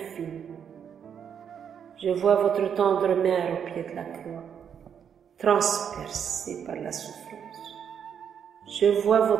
Je vois votre tendre mère au pied de la croix, transpercée par la souffrance. Je vois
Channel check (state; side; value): quieter; left; 8.0 dB